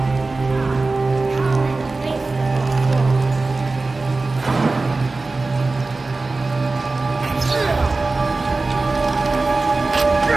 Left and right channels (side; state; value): left; quieter; 3.5 dB